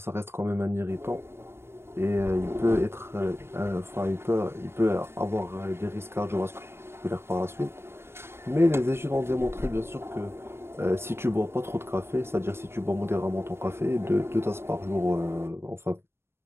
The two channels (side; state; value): left; late; 0.12 ms